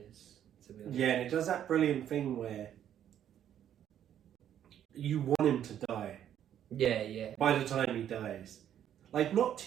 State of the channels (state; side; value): quieter; left; 10.3 dB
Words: to be honest. Yeah, and it does that brilliant thing where you want him to die. Yeah. By the time he dies. Like, not